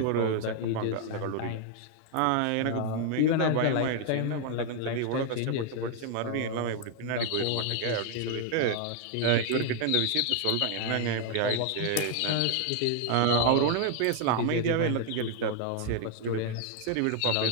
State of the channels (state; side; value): different; both; correlation 0.00